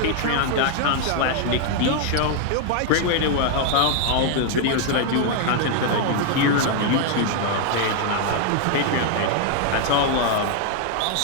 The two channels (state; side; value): different; both; correlation 0.00